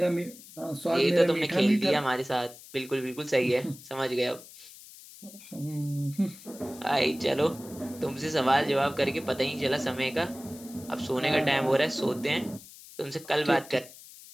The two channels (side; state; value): left; noise; hiss, 18 dB below the sound